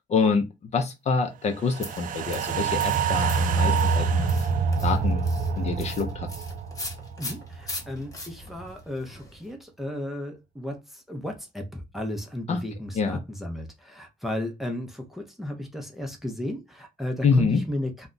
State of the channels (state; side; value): normal; both; correlation 0.51